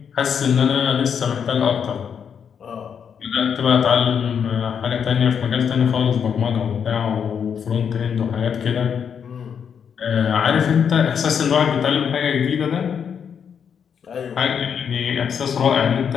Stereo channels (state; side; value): quieter; right; 7.4 dB